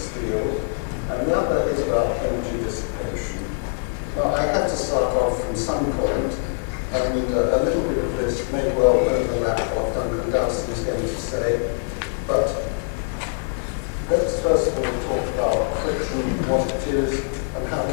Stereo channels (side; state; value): right; silent; digital silence